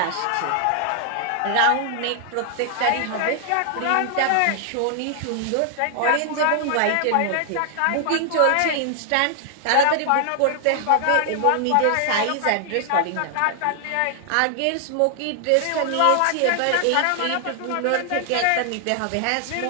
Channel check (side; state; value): both; different; correlation 0.00